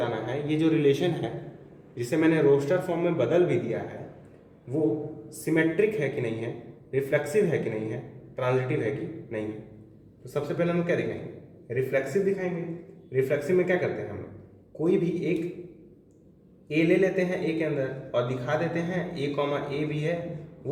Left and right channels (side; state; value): both; identical; correlation 1.00